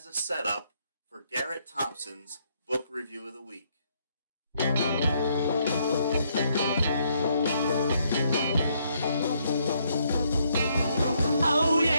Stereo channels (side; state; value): both; inverted; correlation -0.72